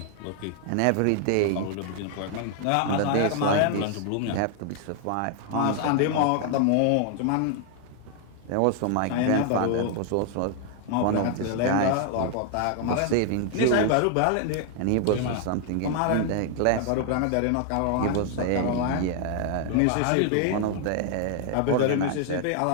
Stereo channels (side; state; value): both; different; correlation 0.00